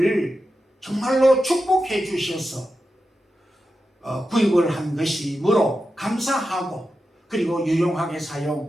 정말로 축복해 주셔서 구입을 한 것이므로 감사하고 그리고 유용하게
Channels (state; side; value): normal; both; correlation 0.90